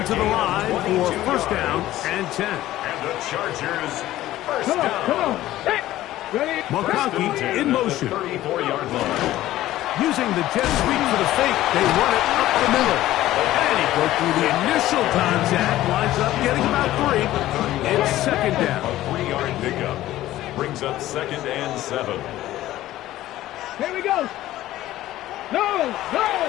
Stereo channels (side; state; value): right; quieter; 14.8 dB